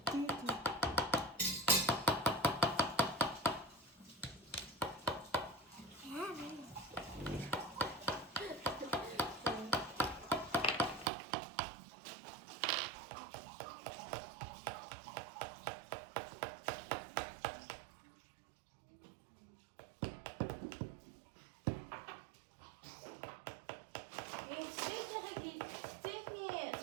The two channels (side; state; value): left; drops out; at 11.1 s